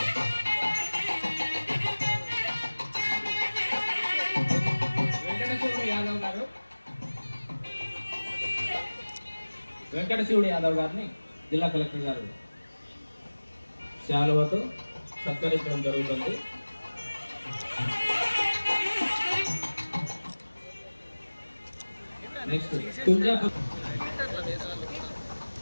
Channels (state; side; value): inverted; both; correlation -1.00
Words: వెంకటశివుడు యాదవ్ గారిని జిల్లా కలెక్టర్ గారు శాలువతో సత్కరించడం జరుగుతుంది. నెక్స్ట్ తుంజాపూర్